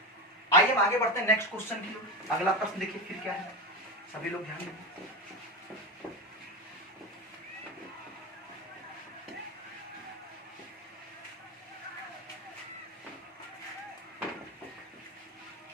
आइए हम आगे बढ़ते हैं नेक्स्ट क्वेश्चन की ओर। अगला प्रश्न देखिए फिर क्या है, सभी लोग ध्यान दें।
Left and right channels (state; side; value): normal; both; correlation 0.19